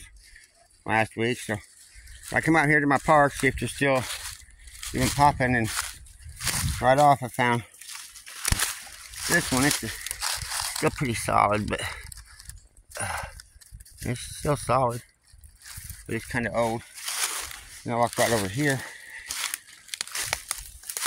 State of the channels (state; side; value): identical; both; correlation 1.00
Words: last week. So I come out here to my park, see if they're still even popping, and right off I found this one. It's still pretty solid, but it's still solid, but it's kind of old. And I walk right over here.